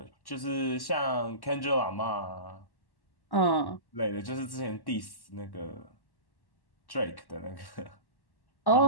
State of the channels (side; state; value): right; late; 1.1 ms